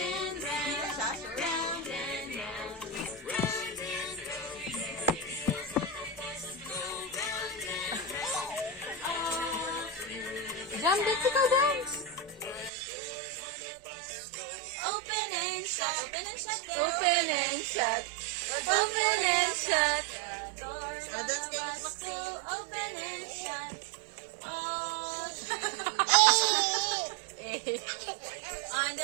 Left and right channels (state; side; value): drops out; left; at 12.7 s